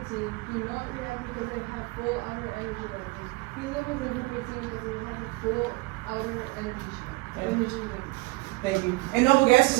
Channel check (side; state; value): left; quieter; 24.5 dB